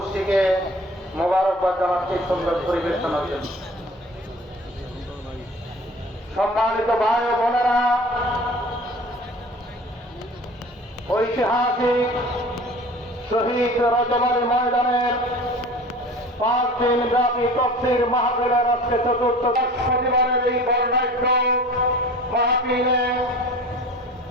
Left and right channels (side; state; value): both; normal; correlation 0.42